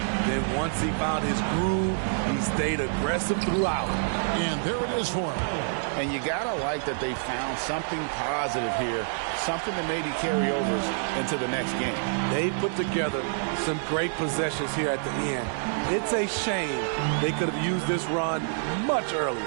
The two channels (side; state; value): left; silent; digital silence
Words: Then once he found his groove, he stayed aggressive throughout. And there it is for him. And you got to like that they found something positive here, something that maybe carry overs into the next game. They put together some great possessions here at the end. It's a shame they could have used this run much earlier.